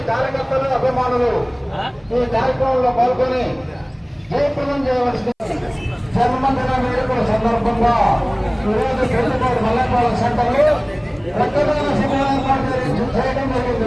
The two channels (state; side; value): identical; both; correlation 1.00